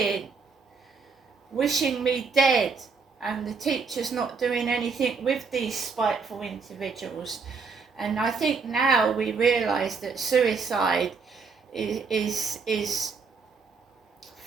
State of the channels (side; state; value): left; quieter; 5.0 dB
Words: wishing me dead, and the teachers not doing anything with these spiteful individuals. And I think now we realise that suicide is